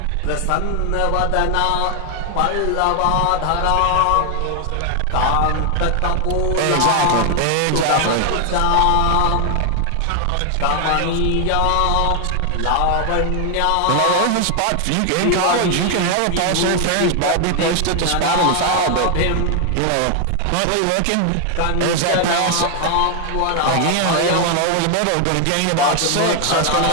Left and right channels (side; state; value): both; different; correlation 0.00